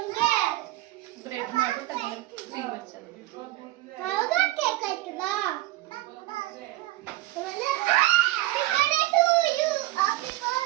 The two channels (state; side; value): quieter; left; 17.6 dB